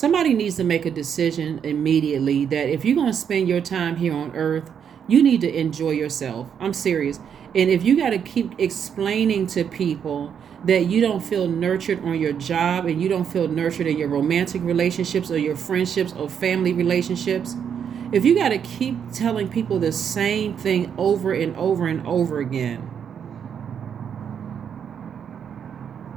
needs to make a decision immediately that if you're going to spend your time here on earth, you need to enjoy yourself. I'm serious. And if you got to keep explaining to people that you don't feel nurtured on your job and you don't feel nurtured in your romantic relationships or your friendships or family relationships, if you got to keep telling people the same thing over and over and over again,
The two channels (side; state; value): left; quieter; 7.9 dB